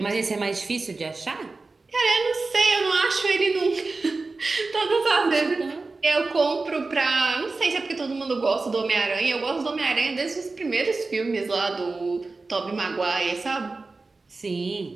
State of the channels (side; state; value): left; quieter; 3.7 dB